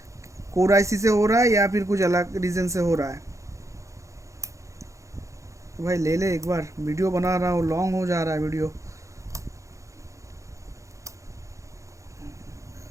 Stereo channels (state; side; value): late; left; 0.15 ms